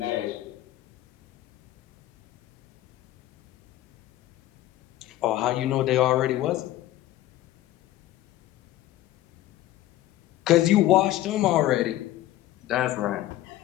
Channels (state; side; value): quieter; right; 14.5 dB